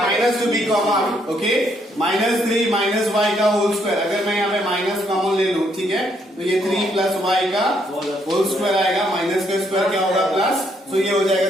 to be common, okay, minus 3 minus y का whole square, अगर मैं यहाँ पे minus common ले लूँ, ठीक है, तो ये 3 plus y का whole square आएगा, minus का square क्या होगा? Plus, so ये हो जाएगा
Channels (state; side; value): normal; both; correlation 0.72